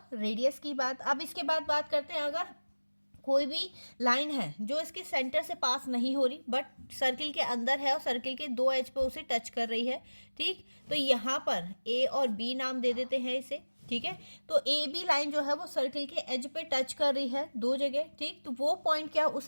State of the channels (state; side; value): inverted; both; correlation -1.00